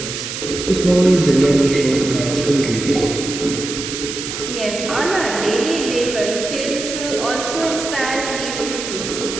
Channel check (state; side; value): noise; right; hiss, 6 dB below the sound